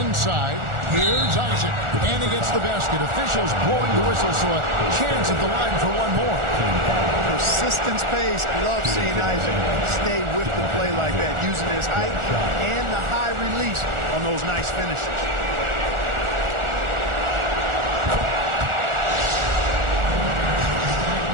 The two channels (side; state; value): left; late; 1.4 ms